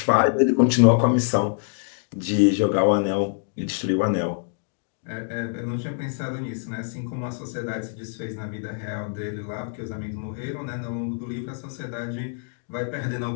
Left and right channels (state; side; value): silent; right; digital silence